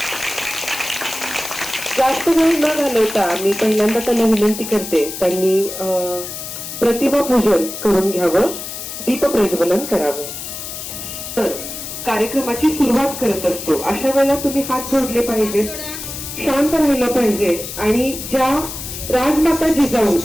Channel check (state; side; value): noise; left; hiss, 8 dB below the sound